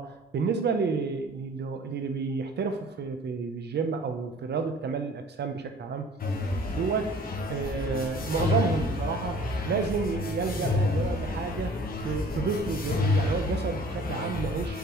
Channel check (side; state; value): both; normal; correlation 0.49